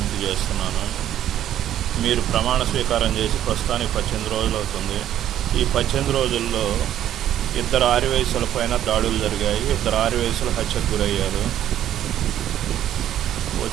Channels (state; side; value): quieter; left; 11.4 dB